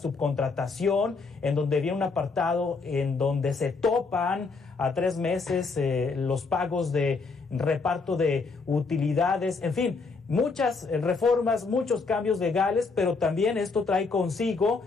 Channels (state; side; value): quieter; right; 4.3 dB